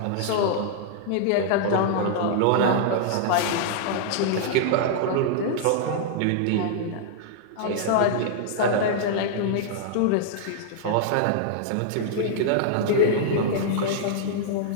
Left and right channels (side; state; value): both; different; correlation -0.01